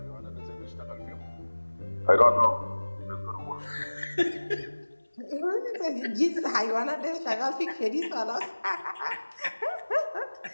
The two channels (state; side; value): inverted; both; correlation -1.00